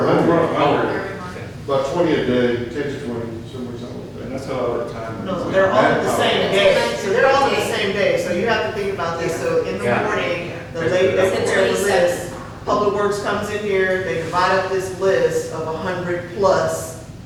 Every month. About 20 a day, 10 to 20, something like that. And that's how our time. No, they're all on the same day. So they're all on the same day. So you have to think about this. So in the Yeah. morning, the lady that prepares the list, Public Works comes in here, they divide up this list of 100 plus,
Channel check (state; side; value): identical; both; correlation 1.00